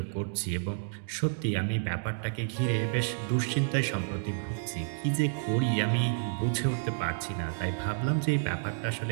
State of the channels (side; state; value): left; silent; digital silence